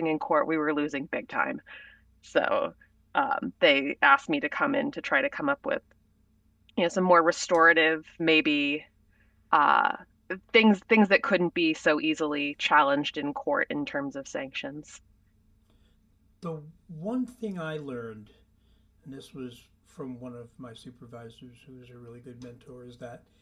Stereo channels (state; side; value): identical; both; correlation 1.00